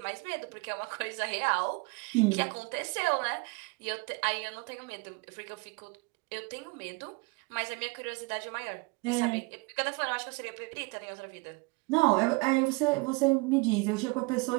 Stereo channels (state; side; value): quieter; left; 27.6 dB